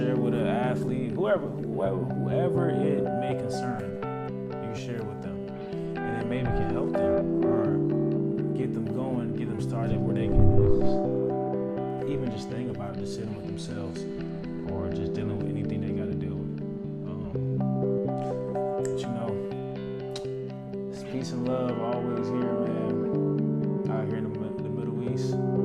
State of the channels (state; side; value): identical; both; correlation 1.00